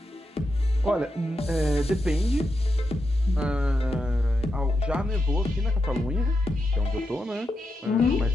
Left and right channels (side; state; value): both; normal; correlation 0.86